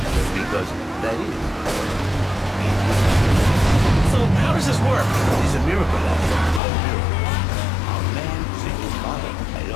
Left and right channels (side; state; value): right; drops out; at 6.6 s